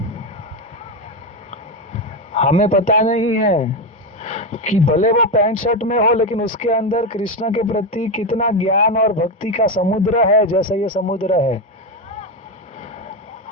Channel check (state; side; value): normal; both; correlation 0.12